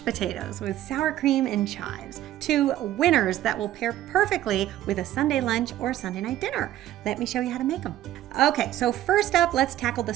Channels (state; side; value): quieter; left; 13.3 dB